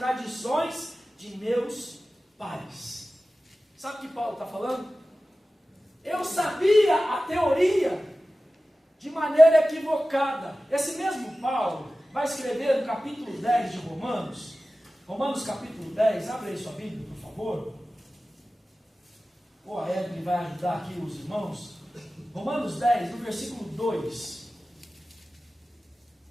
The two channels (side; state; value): both; normal; correlation 0.95